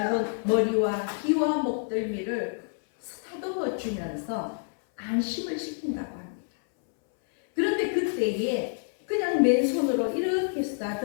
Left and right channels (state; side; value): silent; right; 60 dB below the other